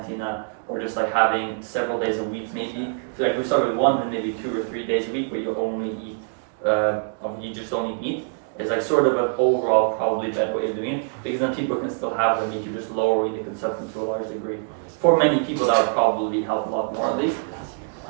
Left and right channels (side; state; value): left; silent; digital silence